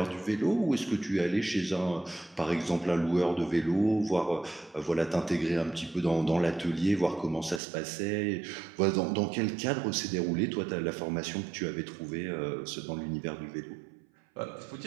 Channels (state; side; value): drops out; left; at 7.6 s